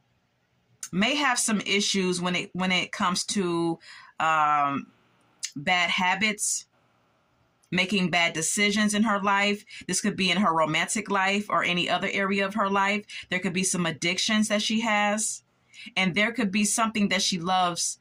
may have some issues when it comes to bad habits, making bad decisions in her life. This could be in her romantic life or any other area of her life. There could be some addictions that she has, and there could be something that she loves.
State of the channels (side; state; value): both; identical; correlation 1.00